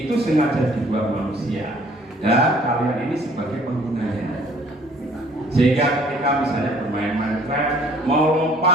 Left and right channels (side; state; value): both; normal; correlation 0.56